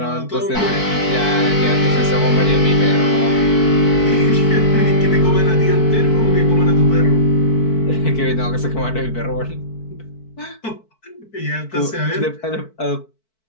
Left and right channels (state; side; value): late; right; 4.6 ms